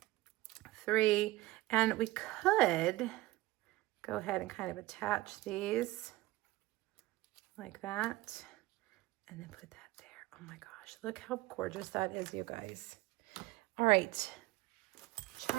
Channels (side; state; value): left; quieter; 18.4 dB